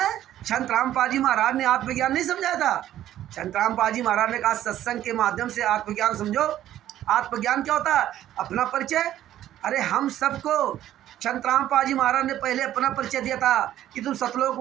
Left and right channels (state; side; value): quieter; left; 12.5 dB